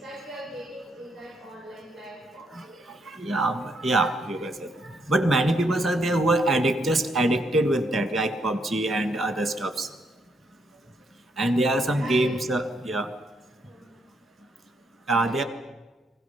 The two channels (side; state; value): both; normal; correlation 0.75